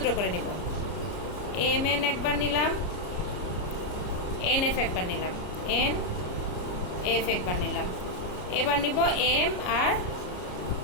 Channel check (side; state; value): right; late; 33 ms